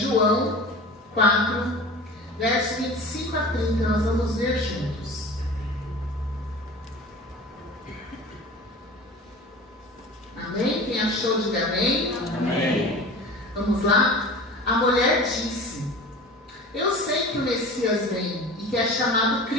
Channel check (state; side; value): normal; both; correlation 0.37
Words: 4, verso 25 a 30, nós vamos ver juntos. Amém? Quem achou, diga amém. Amém. Vamos lá? A mulher disse: eu sei que o Messias vem e que é chamado